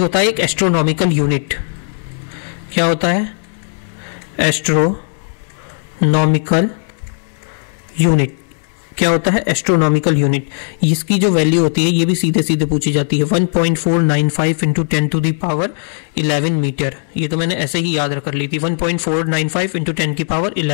है एक एस्ट्रोनॉमिकल यूनिट, क्या होता है, एस्ट्रोनॉमिकल यूनिट क्या होता है, एस्ट्रोनॉमिकल यूनिट। इसकी जो वैल्यू होती है ये भी सीधे सीधे पूछी जाती है, 1.495 into 10 to the power 11 metre. ये तो मैंने ऐसे ही याद कर ली थी, 1.495 इंटू 10 की पावर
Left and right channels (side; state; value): right; silent; digital silence